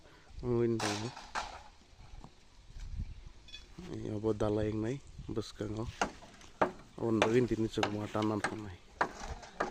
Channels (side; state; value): both; identical; correlation 1.00